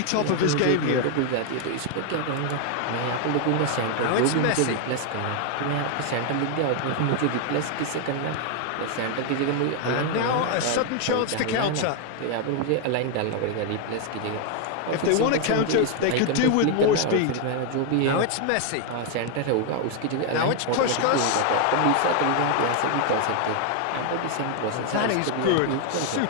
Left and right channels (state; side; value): different; both; correlation 0.00